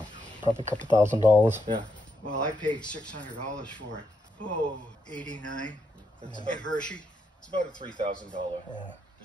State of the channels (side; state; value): both; normal; correlation 0.80